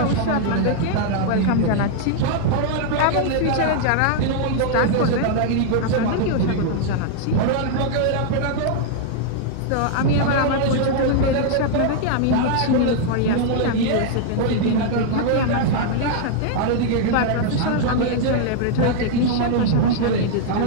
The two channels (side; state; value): both; different; correlation 0.00